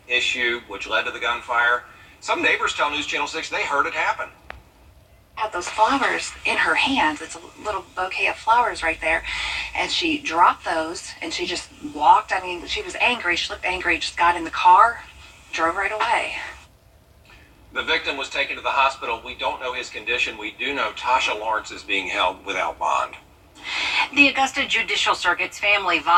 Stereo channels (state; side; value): identical; both; correlation 1.00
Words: issue which led to the gunfire. Some neighbors tell News Channel 6 they heard it happen. Had those flowers in her hands. It's a little bouquet of flowers right there. And she dropped those and she just walked. I mean, she was angry. She looked angry. Just got in the car, drove right away. The victim was taken to the hospital. We don't know his condition. We do know Tasha Lawrence is being held without bond. The Augusta Judicial Circuit's Family